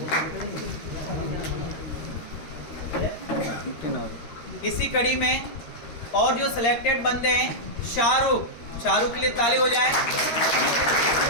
इसी कड़ी में और जो सिलेक्टेड बंदे हैं शाहरुख के लिए ताली हो जाए।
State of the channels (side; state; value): right; late; 13 ms